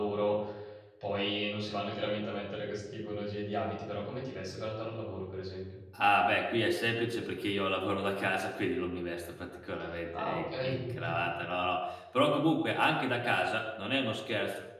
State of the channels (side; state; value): both; identical; correlation 1.00